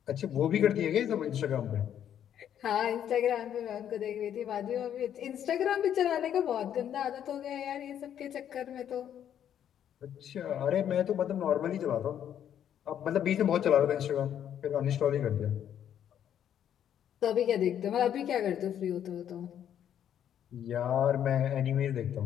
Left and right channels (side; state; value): right; quieter; 9.8 dB